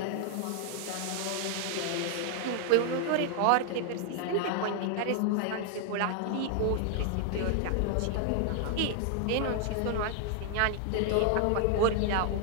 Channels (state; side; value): different; both; correlation 0.00